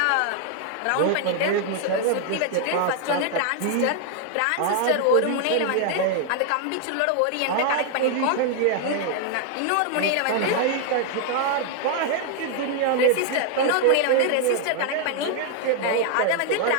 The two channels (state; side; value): different; both; correlation 0.00